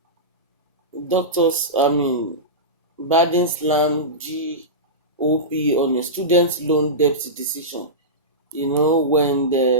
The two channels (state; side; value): normal; both; correlation -0.16